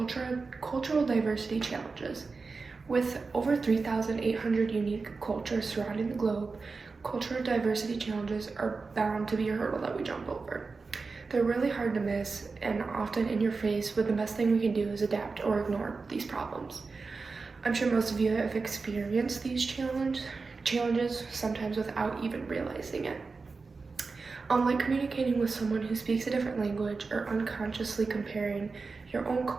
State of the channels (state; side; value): quieter; left; 4.3 dB